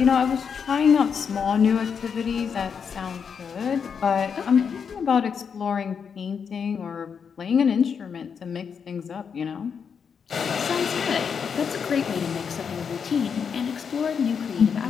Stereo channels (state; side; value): quieter; right; 6.6 dB